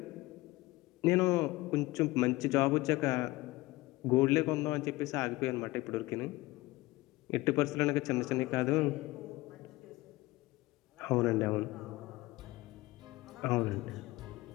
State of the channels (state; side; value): quieter; right; 20.2 dB